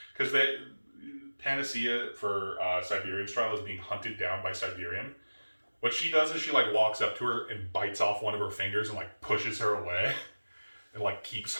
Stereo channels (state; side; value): inverted; both; correlation -1.00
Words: Because Panacea for Siberian's trial is being hunted down by Siberian. What she does is she like walks up to her and bites off one of her fingers and like pushes her away and like keeps